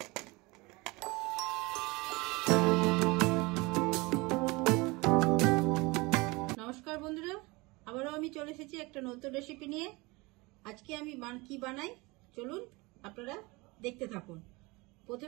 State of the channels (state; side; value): quieter; left; 24.5 dB